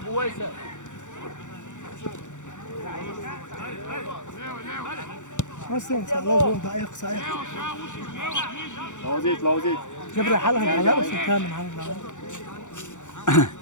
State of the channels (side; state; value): right; late; 0.85 ms